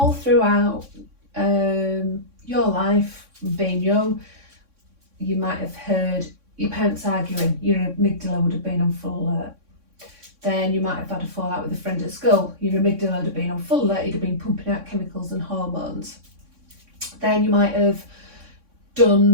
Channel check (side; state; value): left; late; 3.6 ms